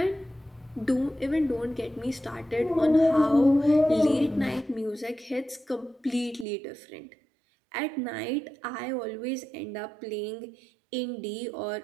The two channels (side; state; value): left; drops out; at 6.5 s